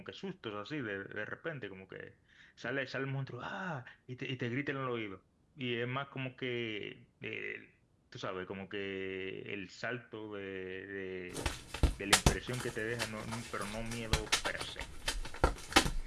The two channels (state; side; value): identical; both; correlation 1.00